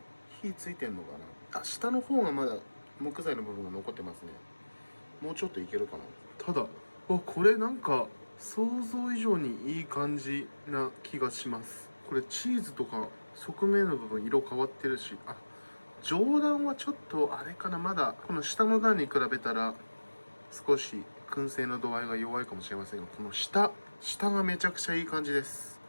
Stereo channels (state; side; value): inverted; both; correlation -1.00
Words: 火ついてんのかな。下の方がまだ木材の部分が残ってますね。もうちょっといけるかな。ただこれなんか想像以上にいい感じな気がします。これチーズとか側面の部分色変わってるし、上段はちょっとあれかな。まだこの下の段に比べたら少し燻製の度合いが弱いかもしれませんが、この下がめちゃくちゃいい感じです。